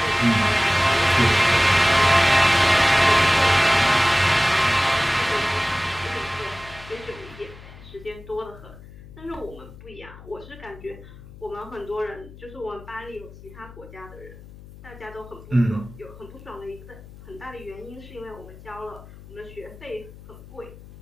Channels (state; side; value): noise; left; hum, 18 dB below the sound